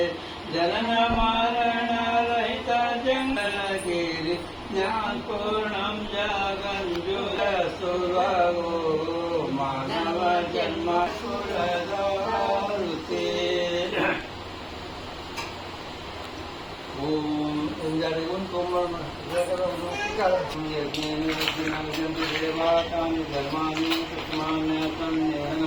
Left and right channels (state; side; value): identical; both; correlation 1.00